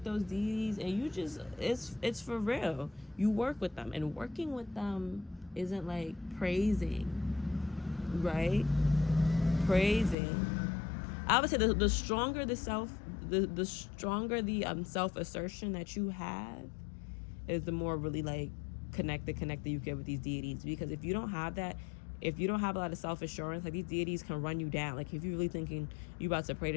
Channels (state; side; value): drops out; right; at 10.2 s